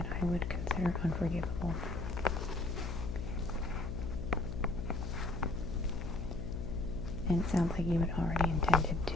I would consider unforgivable. And it sounds like you had already intended to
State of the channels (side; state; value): left; noise; hum, 4 dB below the sound